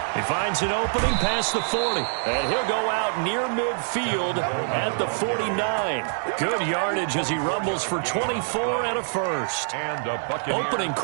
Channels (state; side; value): silent; left; digital silence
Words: He finds an opening past the 40, and he'll go out near midfield at the 49. Good yardage as he rumbles for 24 and a first. Opening